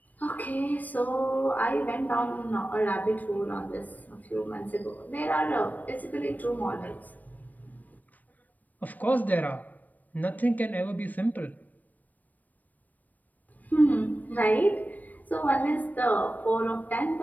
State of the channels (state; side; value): late; right; 0.082 ms